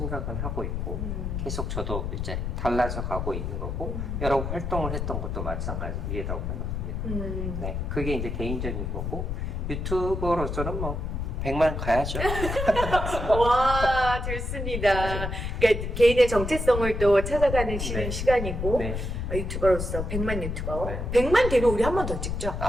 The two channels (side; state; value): left; noise; rumble, 3 dB below the sound